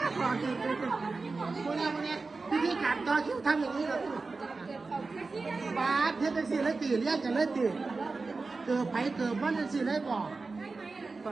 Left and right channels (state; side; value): quieter; left; 3.9 dB